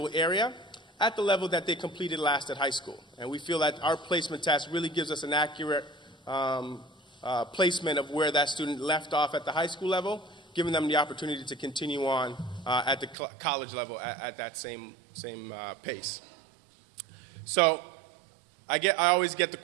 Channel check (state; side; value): drops out; left; at 13.2 s